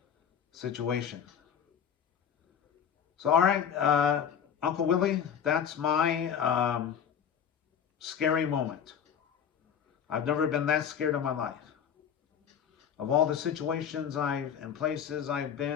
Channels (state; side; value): quieter; right; 8.1 dB